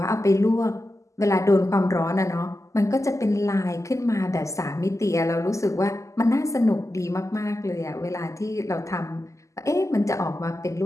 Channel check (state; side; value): late; right; 0.15 ms